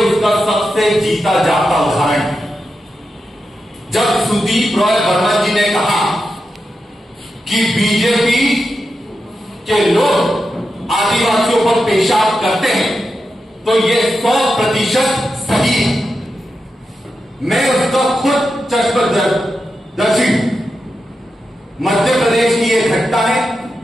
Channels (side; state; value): both; normal; correlation 0.89